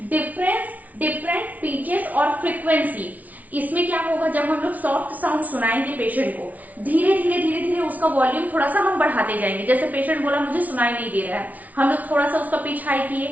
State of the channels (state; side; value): late; left; 0.073 ms